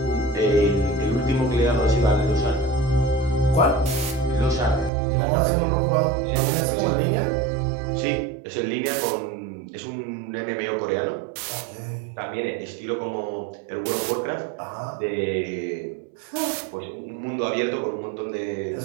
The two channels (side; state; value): left; drops out; at 4.9 s